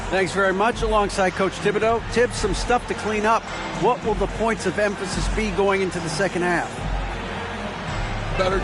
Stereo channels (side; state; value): both; identical; correlation 1.00